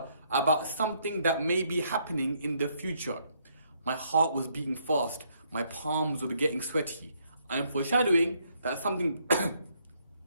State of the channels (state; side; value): inverted; both; correlation -0.71